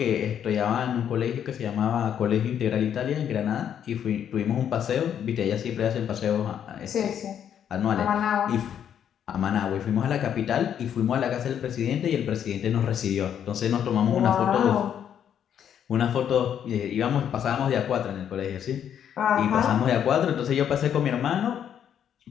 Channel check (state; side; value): quieter; right; 9.1 dB